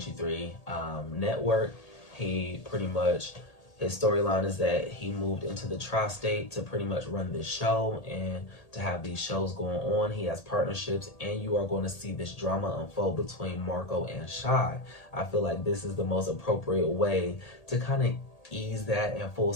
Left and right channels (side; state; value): right; late; 1.8 ms